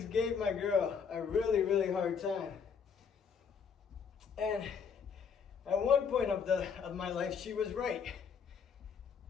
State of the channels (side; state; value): right; quieter; 6.4 dB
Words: gave my girl a really hard time. And at one point of my life, she was right.